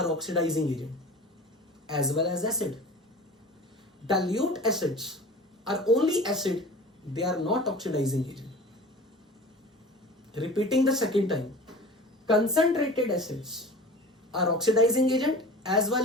oxidizing agent as well as acid. Dilute acids are only acid, they are not oxidizing agent. Repeating the second time, concentrated acids are oxidizing agent as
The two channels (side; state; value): both; normal; correlation 0.38